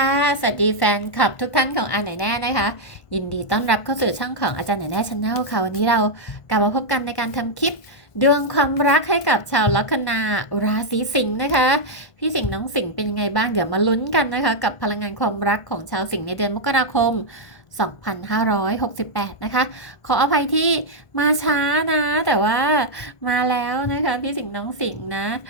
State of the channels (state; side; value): late; right; 1.5 ms